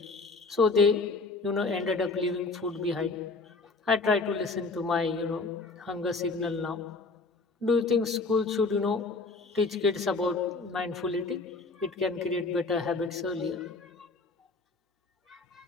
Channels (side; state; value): right; quieter; 3.8 dB